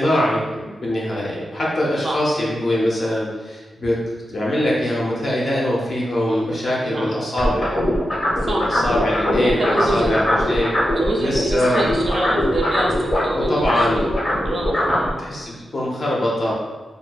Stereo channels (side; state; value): both; normal; correlation 0.89